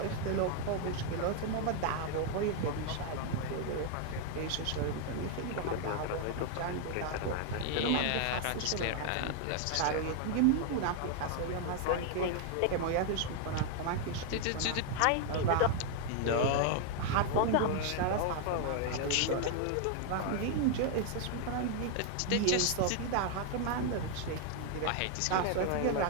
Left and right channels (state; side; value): different; both; correlation 0.00